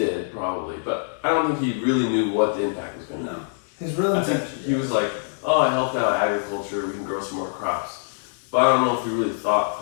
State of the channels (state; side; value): silent; right; digital silence